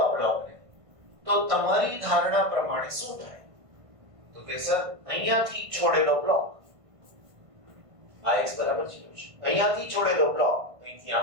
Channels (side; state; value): left; late; 1.5 ms